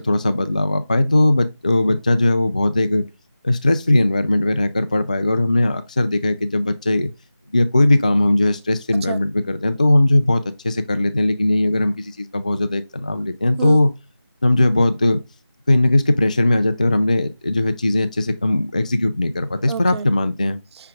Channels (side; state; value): both; inverted; correlation -0.96